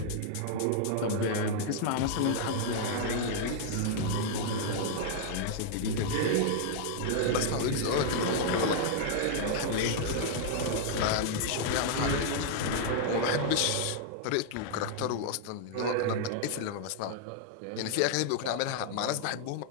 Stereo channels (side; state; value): both; different; correlation -0.01